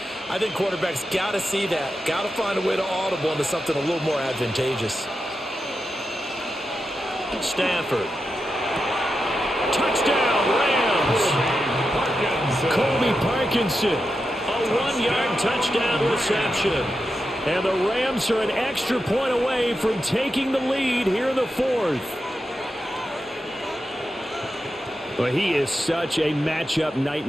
I think quarterbacks got to see that. Got to find a way to audible into something a little more advantageous. Stafford. Touchdown, Rams. Colby Parkinson. A 1-yard touchdown reception. And the Rams are an extra point away from taking the lead here in the 4th. Well, he is such a matchup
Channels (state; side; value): normal; both; correlation 0.88